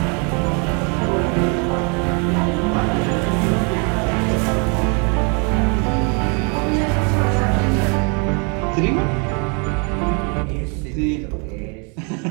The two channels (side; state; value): left; quieter; 35.1 dB